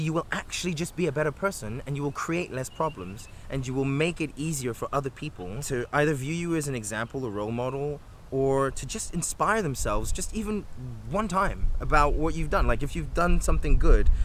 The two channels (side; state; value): both; identical; correlation 1.00